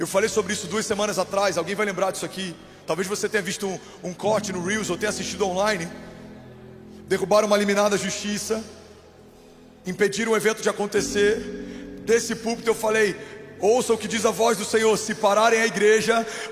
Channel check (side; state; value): both; identical; correlation 1.00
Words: falei sobre isso 2 semanas atrás. Alguém vai lembrar disso aqui? Talvez você tenha visto um corte no Reels ou tenha assistido online. Derrubaram uma liminar da justiça, impediram o evento de acontecer. Desse púlpito eu falei, ouça o que diz a voz do Senhor: se pararem a igreja,